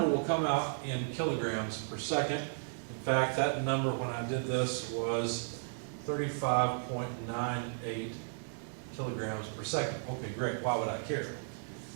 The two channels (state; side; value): silent; left; digital silence